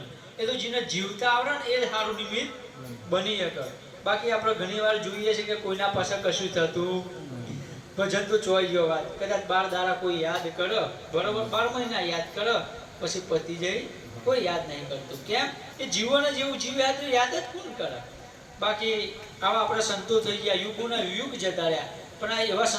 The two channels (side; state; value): both; identical; correlation 1.00